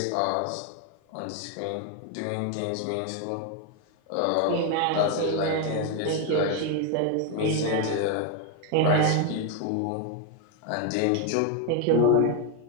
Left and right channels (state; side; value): different; both; correlation 0.01